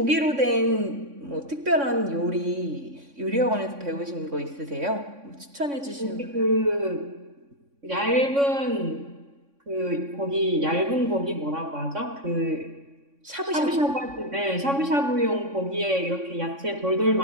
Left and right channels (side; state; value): left; late; 3.6 ms